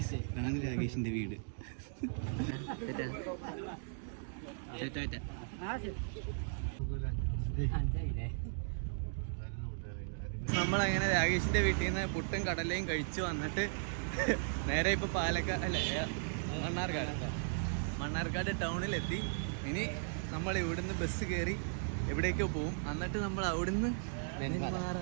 ഇതാണ് രാകേഷിന്റെ വീട്. നമ്മളങ്ങനെ രാകേഷിന്റെ വീട്ടിൽ നിന്ന് പുട്ടും കടലയും കഴിച്ചു വന്നിട്ട് നേരെ ഇപ്പൊ മണ്ണാർക്കാട് ടൗണിലെത്തി. ഇനി നമ്മൾ ഇവിടുന്ന് ബസ് കയറി എവിടേക്കോ പോവും. എന്നിട്ട് നമ്മൾ അവിടുന്ന്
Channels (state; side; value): silent; left; digital silence